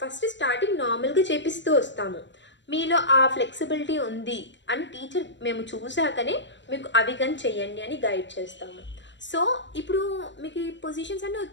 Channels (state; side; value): late; right; 0.53 ms